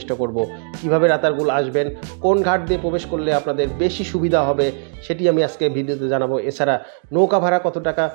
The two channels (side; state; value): left; silent; digital silence